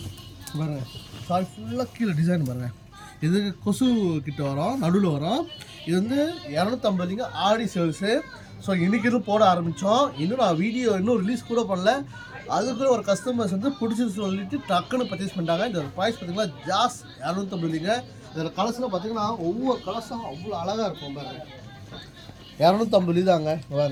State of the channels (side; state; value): both; identical; correlation 1.00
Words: பாருங்கள் சாரி ஃபுல்லாக கீழே டிசைன் பாருங்கள். இது கொசு கிட்ட வரும், நடுவில் வரும். இது வந்து 250லிங்க ஆடி சேல்ஸு. ஸோ இன்றைக்கி இது போட ஆரம்பித்தோம். இன்னும் நான் வீடியோ இன்னும் ரிலீஸ் கூட பண்ணல. அதுக்குள்ள ஒரு கஸ்டமர்ஸ் வந்து பிடிச்சின்னு சொல்லிட்டு டக்குன்னு பர்ச்சேஸ் பண்ணிட்டாங்க. இந்த ப்ரைஸ் பார்த்தீங்கன்னா ஜாஸ் 250லிங்க. இதில் கலர்ஸ்லாம் பார்த்தீங்கன்னா ஒவ்வொரு கலர்ஸும் அவ்வளோ அழகாக இருக்கும் பாருங்க. 250 தாங்க